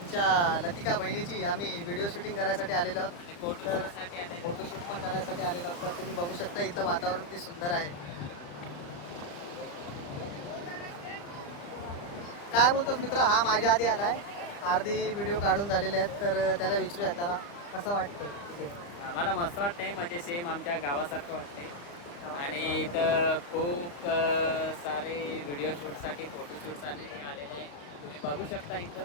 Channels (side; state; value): right; late; 35 ms